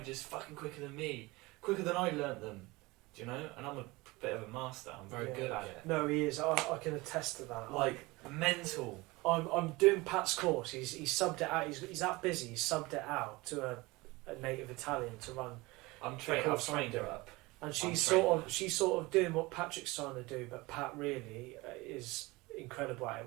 fucking quicker than me, quicker than I learnt them, do you know? And I'm a bit of a master, I'm very good at it. No, he is. I can attest to that. Like, mental. I'm doing Pat's course. He's subbed it out. He's that busy. He's subbed it out to a native Italian to run. I've trained her up. And she's sort of doing what Patrick's trying to do, but Pat really is incredible at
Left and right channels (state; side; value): quieter; left; 22.4 dB